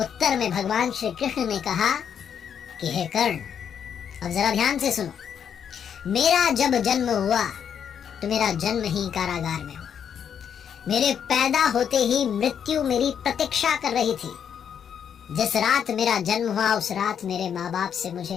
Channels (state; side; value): quieter; right; 8.1 dB